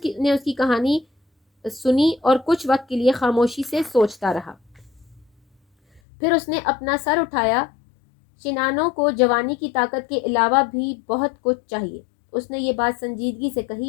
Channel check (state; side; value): drops out; right; at 6.0 s